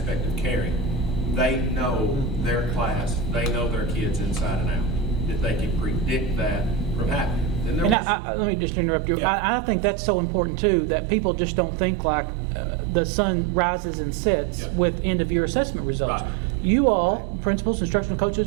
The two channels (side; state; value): left; drops out; at 8.0 s